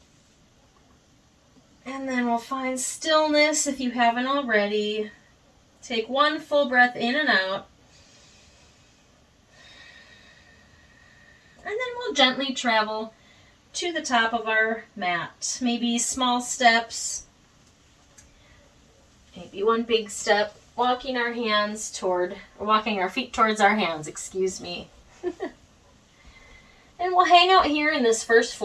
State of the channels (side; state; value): both; identical; correlation 1.00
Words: And then we'll find stillness if you haven't already. Take one full breath in and out. And then we'll gently travel to the top of our mat. Maybe small steps, maybe one big step, walking our feet towards our hands, excuse me. And we'll hang out here in this first